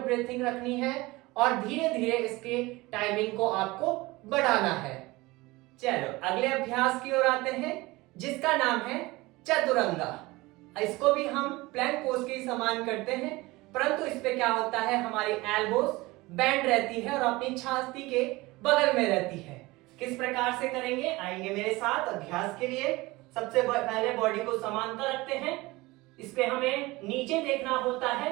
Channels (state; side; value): quieter; left; 21.2 dB